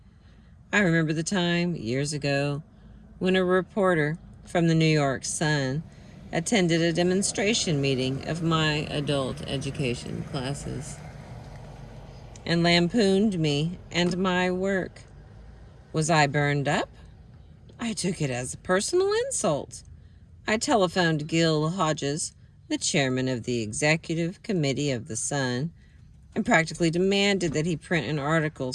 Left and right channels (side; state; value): both; identical; correlation 1.00